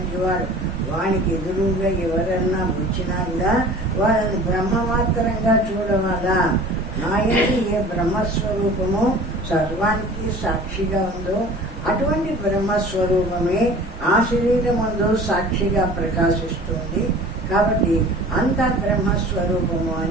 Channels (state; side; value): normal; both; correlation 0.43